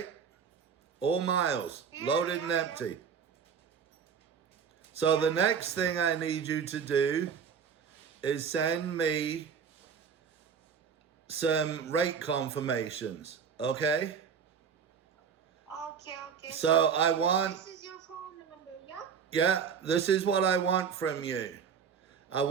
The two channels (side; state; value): left; quieter; 6.9 dB